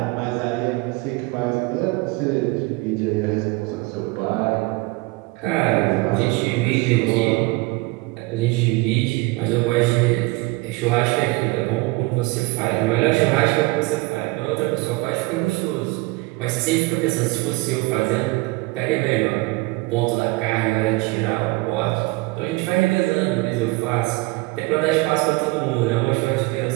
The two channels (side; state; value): left; quieter; 23.1 dB